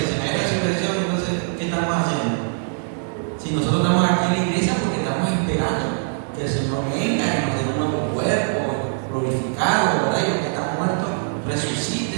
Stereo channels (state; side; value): silent; left; 64 dB below the other